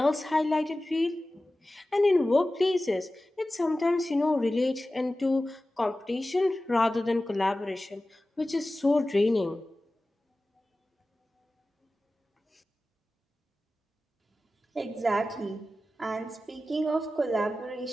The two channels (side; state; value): both; normal; correlation 0.95